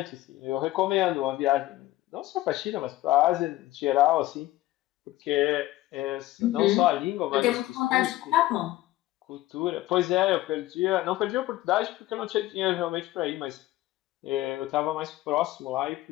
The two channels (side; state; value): right; quieter; 16.5 dB